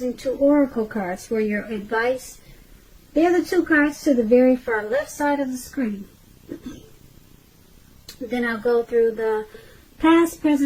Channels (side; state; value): both; identical; correlation 1.00